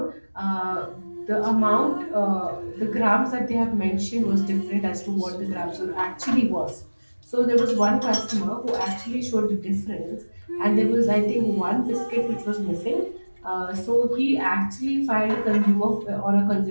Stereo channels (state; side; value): inverted; both; correlation -1.00